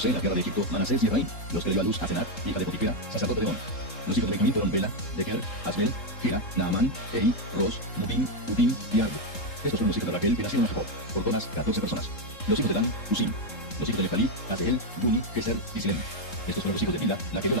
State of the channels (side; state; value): right; late; 3.7 ms